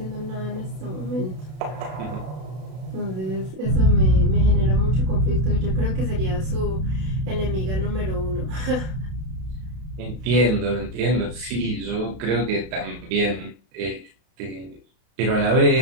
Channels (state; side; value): late; left; 32 ms